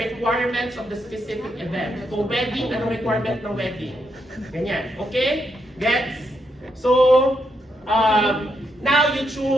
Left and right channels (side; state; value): both; normal; correlation 0.80